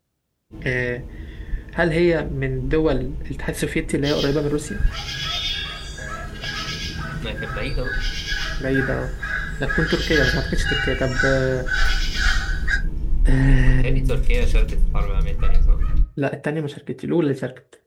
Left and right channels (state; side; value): identical; both; correlation 1.00